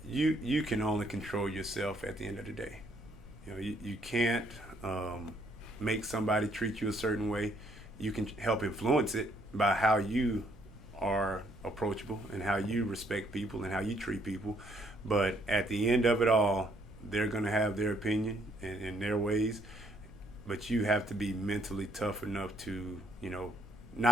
you can only control yourself at the end of the day. You can't make somebody treat you a certain way. You can help influence it by how you are approachable and how you respect people and how you treat people. But at the end of it all, they're going to have their opinion and their ways. But you have to be mentally tough enough to,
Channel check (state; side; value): normal; both; correlation 0.68